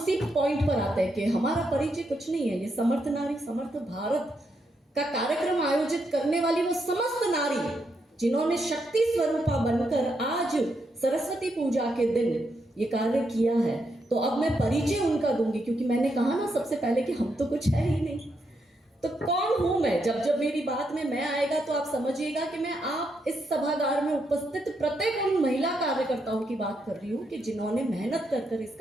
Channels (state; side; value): normal; both; correlation 0.80